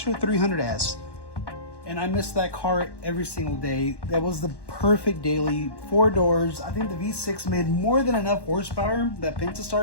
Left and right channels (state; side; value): late; right; 1.1 ms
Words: 300S, and I missed that car every single day. That was the perfect daily. 4 doors. I think the V6 made more than enough horsepower, that